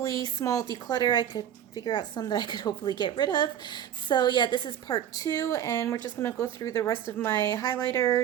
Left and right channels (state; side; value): quieter; left; 10.1 dB